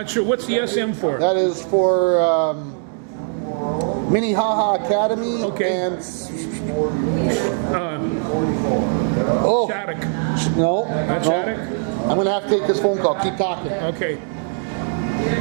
sure what's the SM for. That is for Minnehaha Academy. Okay. And oh Shattuck. no, Not no. Shattuck? I'm gonna have to take this phone call. Keep talking. Okay.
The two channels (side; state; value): left; silent; 58 dB below the other